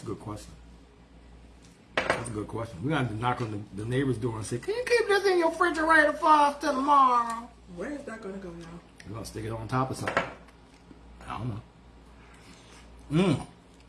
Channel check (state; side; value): identical; both; correlation 1.00